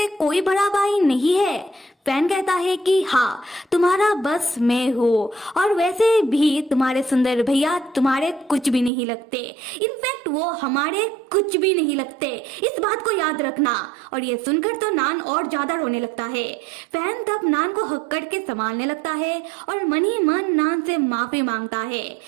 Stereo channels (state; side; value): drops out; left; at 8.9 s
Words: कोई बड़ा भाई नहीं है? फैन कहता है कि हाँ, तुम्हारा बस मैं हूँ और वैसे भी तुम्हारे सुंदर भैया तुम्हारे कुछ भी नहीं लगते। इनफैक्ट वो हमारे कुछ भी नहीं लगते, इस बात को याद रखना। और ये सुनकर तो नान और ज्यादा रोने लगता है। फैन तब नान को हक्कड़ के संभालने लगता है और मन ही मन नान से माफी मांगता है।